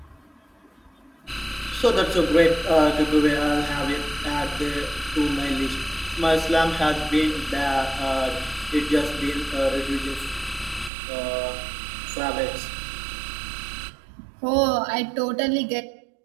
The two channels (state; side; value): drops out; left; at 10.9 s